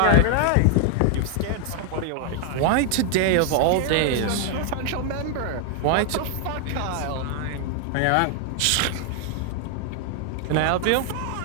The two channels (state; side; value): different; both; correlation 0.00